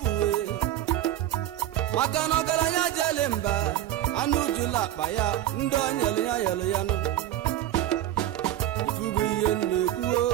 maka na ọgaranya jele mba anụ jula akpa ya ndị onyelu ya yelu ya nụ ifugo ihe na-ekwuo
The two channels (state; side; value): quieter; left; 12.7 dB